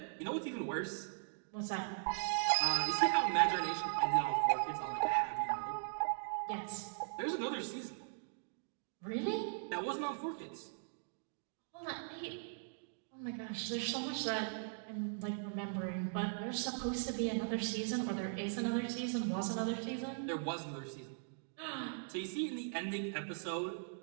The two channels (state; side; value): silent; left; digital silence